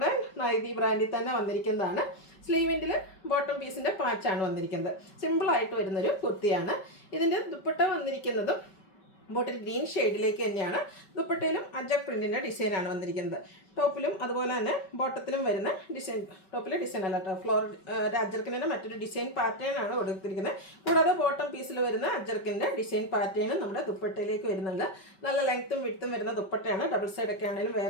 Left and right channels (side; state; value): right; late; 5.2 ms